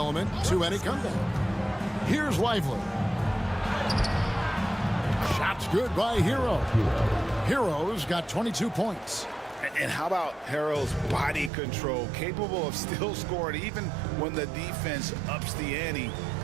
to any comeback. Here's Lively. Shot's good by Hero. Hero's got 22 points. And how about Harrell's body control, capable of still scoring even when the defense ups the ante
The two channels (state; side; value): drops out; left; at 11.5 s